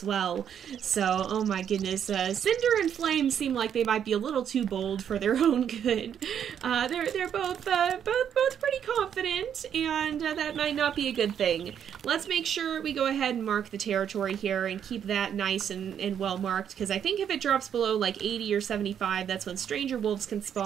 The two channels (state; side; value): quieter; left; 8.8 dB